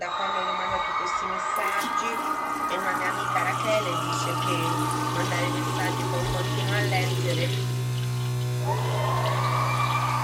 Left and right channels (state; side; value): identical; both; correlation 1.00